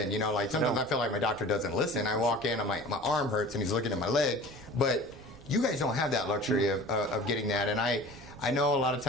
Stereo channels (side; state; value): right; noise; rumble, 21 dB below the sound